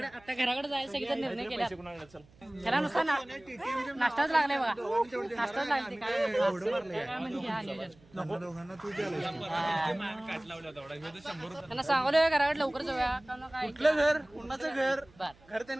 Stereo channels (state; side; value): noise; right; hum, 27 dB below the sound